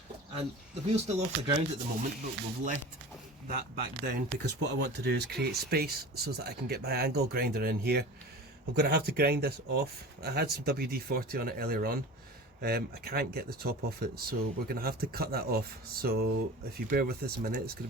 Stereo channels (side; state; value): both; normal; correlation 0.36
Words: and the wheel's still off the ground at the moment, but we've let that back down because what I want to do is create space so that I can get my angle grinder in here. I'm going to have to grind this off. I had some WD-40 on it earlier on. I can't get the top off it, so we're going to have to cut that off. So if you bear with us a minute, it's going